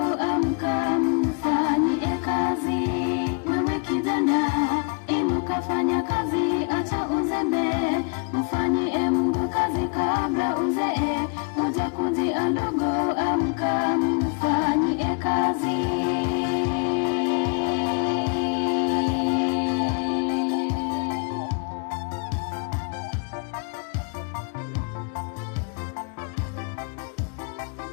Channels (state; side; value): quieter; right; 37.8 dB